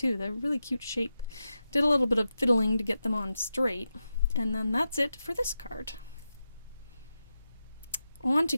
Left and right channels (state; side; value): inverted; both; correlation -0.89